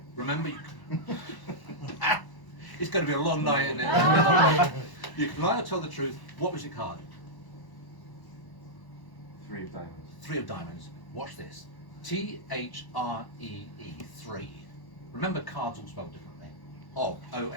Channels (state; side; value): late; right; 1.0 ms